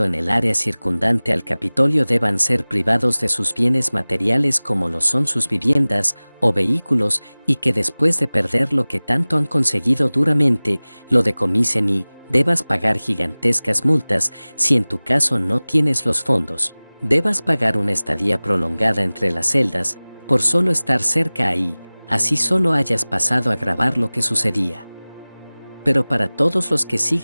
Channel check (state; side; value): inverted; both; correlation -1.00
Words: en el área circundante al Capitolio deban ser privados de sus bienes materiales como lo son sus viviendas o vehículos y que después de perder lo que tanto han conseguido duramente, lo decomisen y debas pagar gigantescas multas si en tu caso no tienes los fondos? Debas pagar una estadía prolongada entre las celdas por solo estar cerca ahí, así solo hayas pasado a grabar lo que sucedía. Pero para todos los que